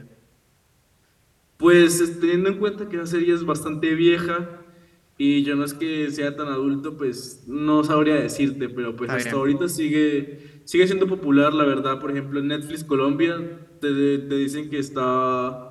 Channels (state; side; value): identical; both; correlation 1.00